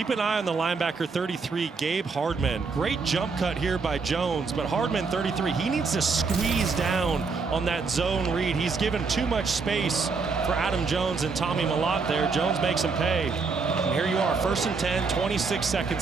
an eye on the linebacker 33, Gabe Hardman. Great jump cut here by Jones, but Hardman 33, he needs to squeeze down on that zone read. He's given too much space for Adam Jones and Tommy Malott there. Jones makes him pay. And here you are, 1st and 10, 26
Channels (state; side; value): quieter; left; 4.6 dB